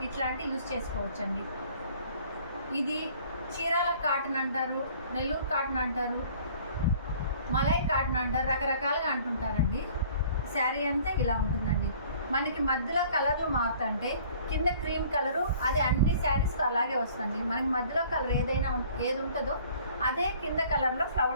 ఇట్లాంటివి యూజ్ చేసుకోవచ్చు అండి. ఇది చీరాల కాటన్ అంటారు, నెల్లూరు కాటన్ అంటారు, మలై కాటన్ అంటారు, రకరకాలుగా అంటుంటారండి. శారీ అంతా ఇలా ఉంటుందండి. మనకి మధ్యలో కలర్లు మారుతుంటే కింద క్రీమ్ కలరు, అది అన్ని శారీస్కి అలాగే వస్తుంది. మనకి మధ్యలో కలర్ ఏది ఉంటుందో అదే కింద కలర్లో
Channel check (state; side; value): inverted; both; correlation -0.53